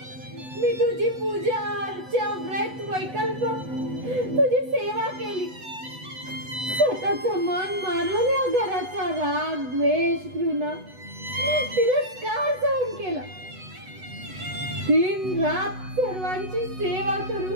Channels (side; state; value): left; late; 8.0 ms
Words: मी तुझी पूजा अर्चा व्रत वैकल्प तुझी सेवा केली. स्वतःचं मन मारून या घराचा राग द्वेष घृणा तिरस्कार सहन केला. दिन रात सर्वांची सेवा